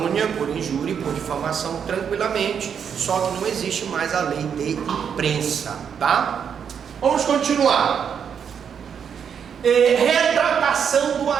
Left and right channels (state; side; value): quieter; left; 7.5 dB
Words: por injúria e por difamação tranquilamente, só que não existe mais a lei de imprensa, tá? Vamos continuar. Retratação do